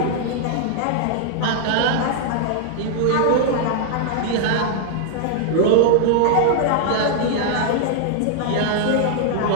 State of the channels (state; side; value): different; both; correlation -0.01